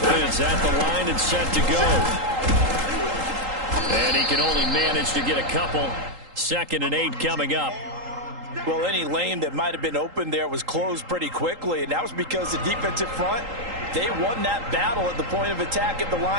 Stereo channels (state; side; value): late; left; 3.8 ms